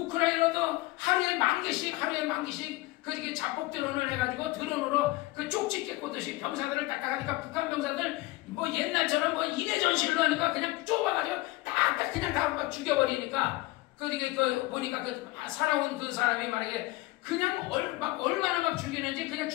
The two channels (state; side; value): quieter; right; 19.8 dB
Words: 하루에 만 개씩 자폭 드론을 해가지고 드론으로 쪽집게 꽂듯이 병사들을 딱딱하니까 북한 병사들 옛날처럼 이내 전실로 하니까 그냥 좁아가지고 딱딱 그냥 다 막 죽여버리니까 보니까 살아온 그 사람이 만약에 그냥 얼마나 막 죽이는지 그냥